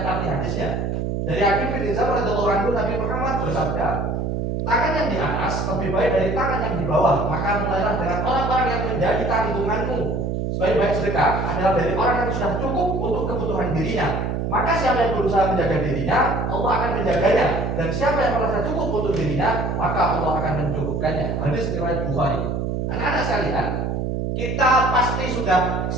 arti hadisnya. Dari Hakim bin Hizam radhiyallahu anhu, Nabi Muhammad bersabda, tangan yang di atas lebih baik dari tangan yang di bawah. Maka mulailah dengan orang-orang yang menjadi tanggunganmu. Sebaik-baik sedekah adalah dari orang yang sudah cukup untuk kebutuhan dirinya. Maka siapa yang berusaha menjaga dirinya, Allah akan menjaganya. Dan siapa yang merasa cukup untuk dirinya, maka Allah akan mencukupkannya. Hadis riwayat Bukhari. Anak-anak sekalian, kita pasti sudah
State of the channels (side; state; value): right; noise; hum, 1 dB below the sound